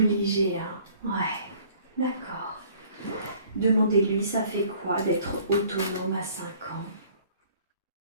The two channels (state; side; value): inverted; both; correlation -0.55